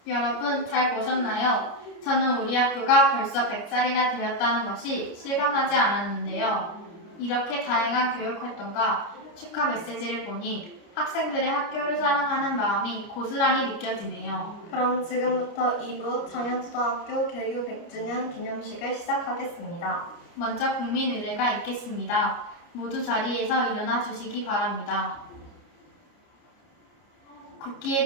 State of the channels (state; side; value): late; right; 29 ms